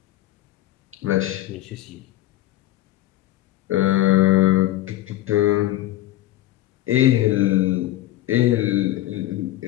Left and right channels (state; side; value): quieter; right; 15.1 dB